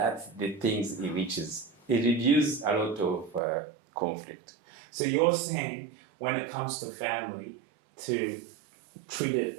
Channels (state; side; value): drops out; left; at 3.4 s